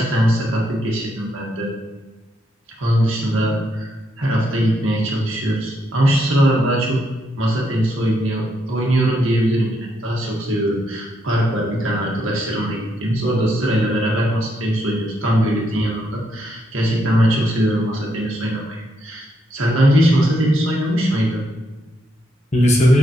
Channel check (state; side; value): normal; both; correlation 0.77